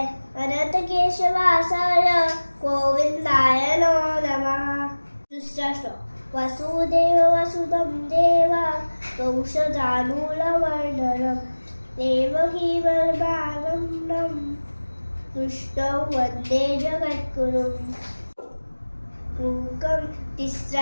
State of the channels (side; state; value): both; inverted; correlation -1.00